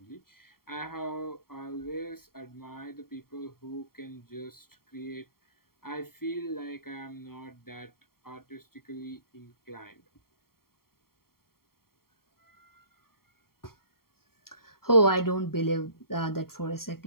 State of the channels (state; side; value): late; right; 0.93 ms